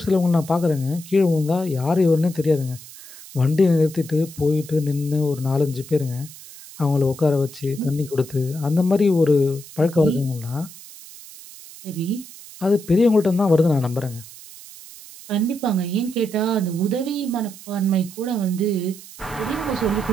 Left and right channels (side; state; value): right; noise; hiss, 17 dB below the sound